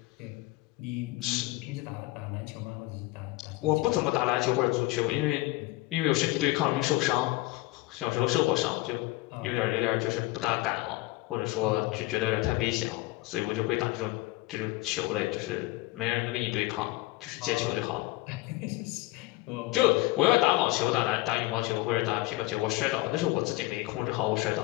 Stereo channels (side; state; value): right; quieter; 19.9 dB